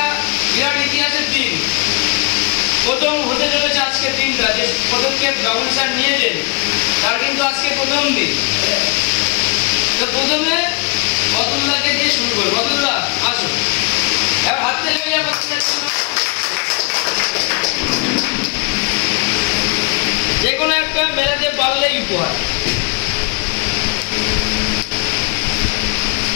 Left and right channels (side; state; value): right; quieter; 29.0 dB